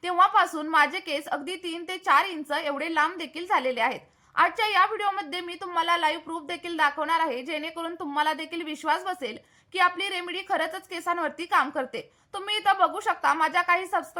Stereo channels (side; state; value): both; identical; correlation 1.00